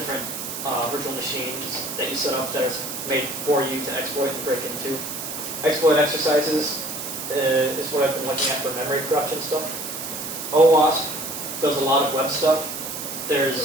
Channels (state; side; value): noise; right; hiss, 6 dB below the sound